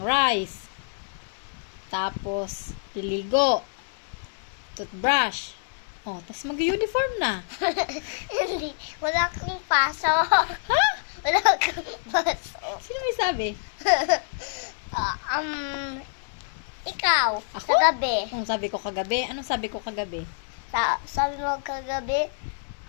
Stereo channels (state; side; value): silent; right; digital silence